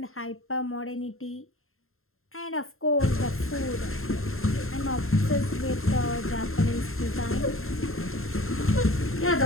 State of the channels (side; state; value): right; late; 0.61 ms